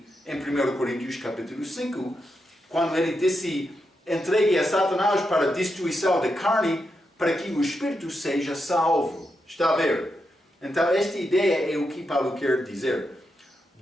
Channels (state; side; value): normal; both; correlation 0.85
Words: em 1 Coríntios capítulo 5, quando ele disse, entregue a Satanás para a destruição da carne, para que o Espírito seja salvo. Está a ver? Então, esta ideia é o que Paulo quer dizer.